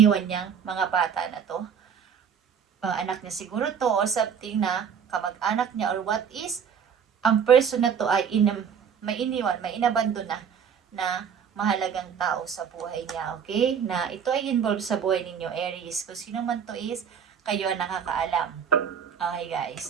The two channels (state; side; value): quieter; left; 7.4 dB